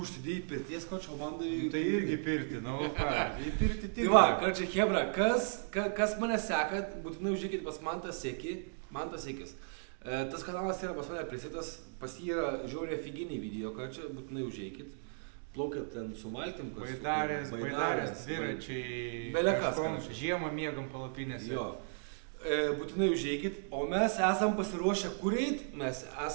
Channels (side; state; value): left; silent; digital silence